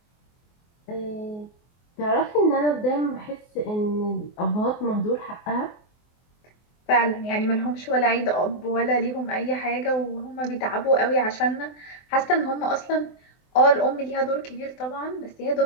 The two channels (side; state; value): right; late; 24 ms